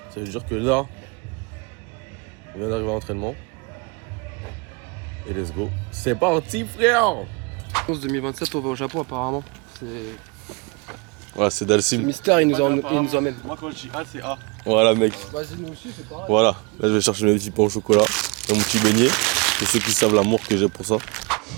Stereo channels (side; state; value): left; quieter; 30.5 dB